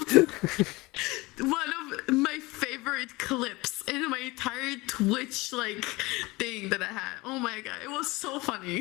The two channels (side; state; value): right; quieter; 22.4 dB